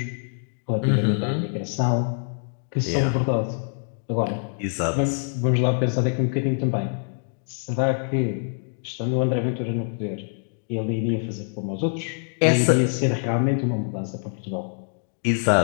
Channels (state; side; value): silent; right; digital silence